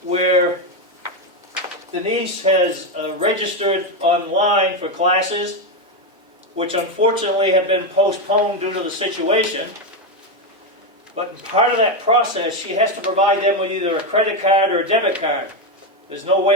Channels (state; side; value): normal; both; correlation 0.08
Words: where Denise has registered online for classes, which unfortunately have been postponed due to the situation. But in part of that process, she has to provide them with either a credit card or a debit card. There's no